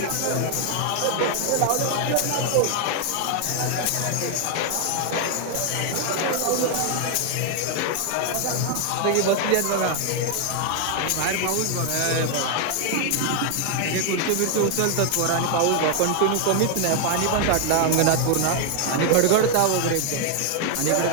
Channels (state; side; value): different; both; correlation 0.00